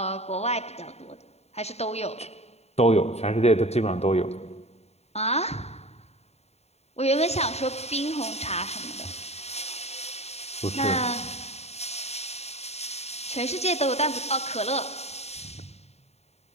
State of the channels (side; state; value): right; late; 0.31 ms